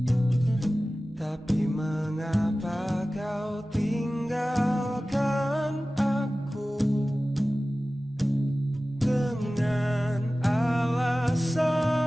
Tapi mengapa kau tinggalkan aku dengan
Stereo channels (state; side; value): normal; both; correlation 0.96